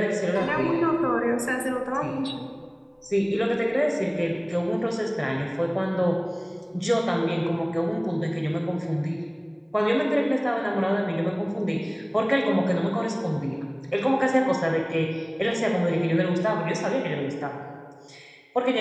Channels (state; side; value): identical; both; correlation 1.00